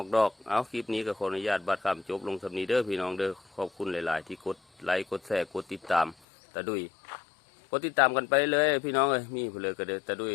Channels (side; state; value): right; drops out; at 6.2 s